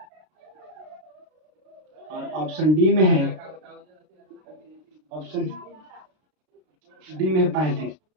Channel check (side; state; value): left; late; 32 ms